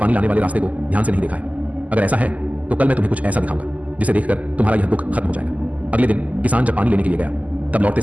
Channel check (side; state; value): left; late; 0.075 ms